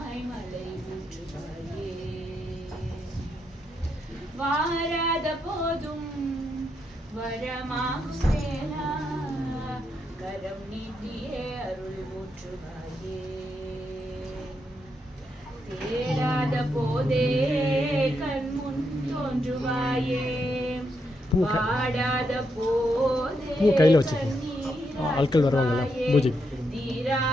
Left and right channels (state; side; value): normal; both; correlation 0.81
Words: மலை ஊற்றுவாயே. வாராத போதும் வரமாகும் வேளா கரம் நீட்டியே அருள் ஊற்றுவாயே. தேடாத போதே கண்முன் தோன்றுவாயே. பாடாத போதே ஆட்கள் வருவாங்கல்ல பூஜை